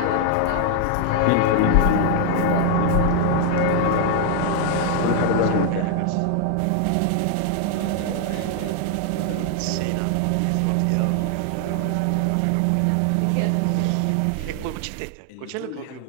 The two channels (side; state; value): both; different; correlation 0.00